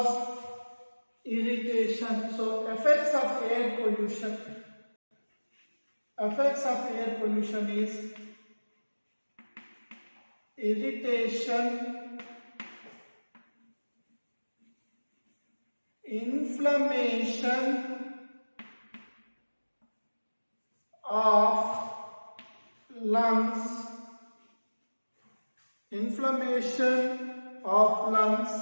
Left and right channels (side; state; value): both; inverted; correlation -1.00